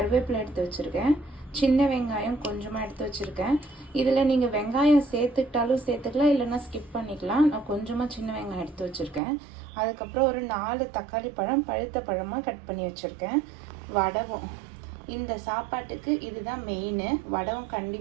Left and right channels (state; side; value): drops out; left; at 9.2 s